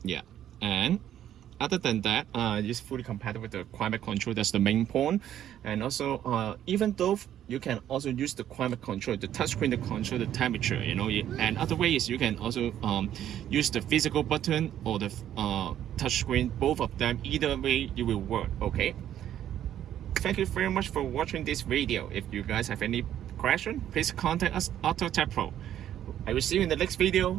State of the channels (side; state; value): left; quieter; 11.1 dB